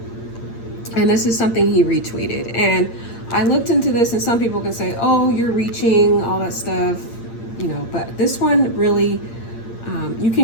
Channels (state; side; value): late; right; 8.8 ms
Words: And this is something he retweeted. And I looked into this, and some people can say, oh, you're reaching, all that stuff, but this one really, you